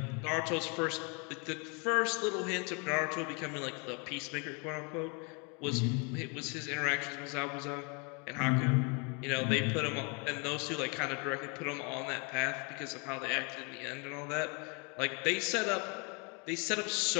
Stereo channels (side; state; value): right; quieter; 33.3 dB